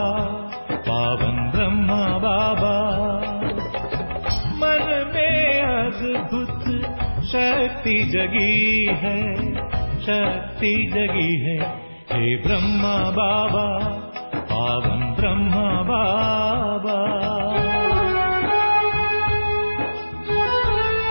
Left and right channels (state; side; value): inverted; both; correlation -1.00